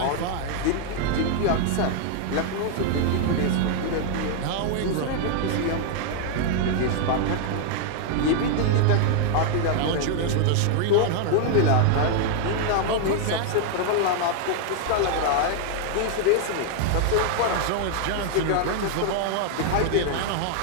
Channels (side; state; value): both; different; correlation 0.00